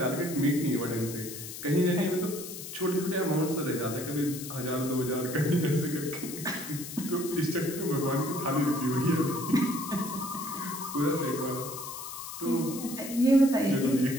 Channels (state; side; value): noise; left; hiss, 10 dB below the sound